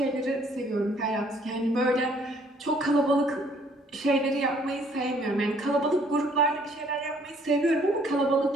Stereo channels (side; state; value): both; normal; correlation 0.62